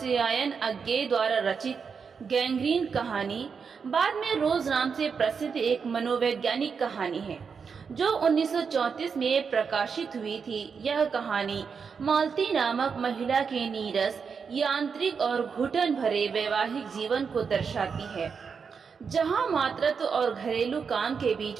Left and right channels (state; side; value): quieter; left; 5.9 dB